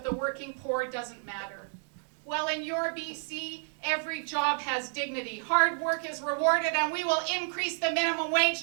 the working poor doesn't matter. Well, in your BC, every job has dignity. Hard work is rewarded, and we will increase the minimum wage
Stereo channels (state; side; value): silent; left; 57 dB below the other